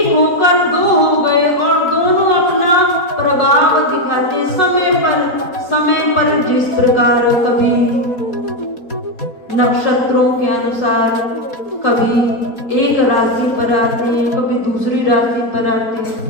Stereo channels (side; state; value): right; late; 4.2 ms